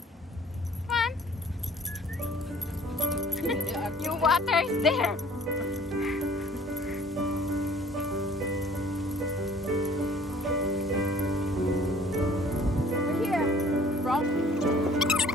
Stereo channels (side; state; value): both; normal; correlation 0.53